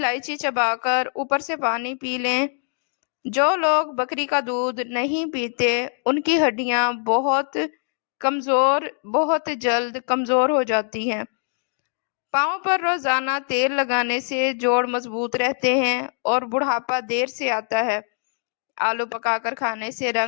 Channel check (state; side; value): silent; right; 60 dB below the other